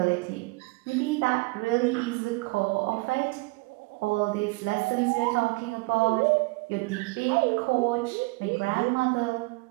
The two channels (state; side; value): quieter; left; 25.3 dB